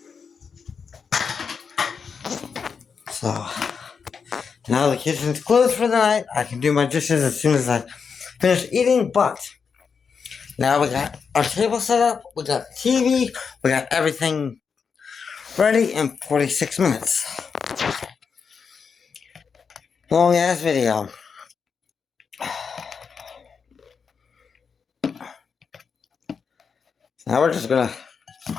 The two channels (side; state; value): right; quieter; 6.0 dB